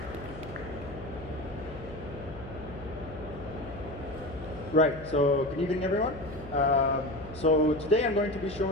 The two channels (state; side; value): noise; left; hum, 14 dB below the sound